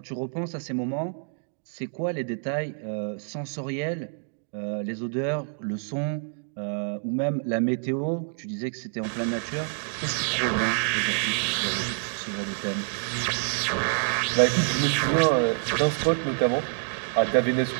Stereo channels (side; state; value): left; silent; digital silence